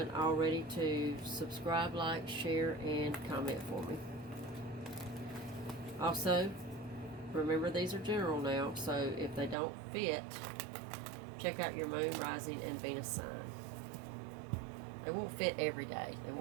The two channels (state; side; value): drops out; left; at 9.6 s